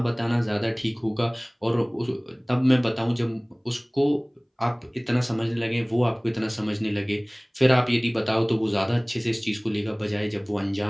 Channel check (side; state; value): both; identical; correlation 1.00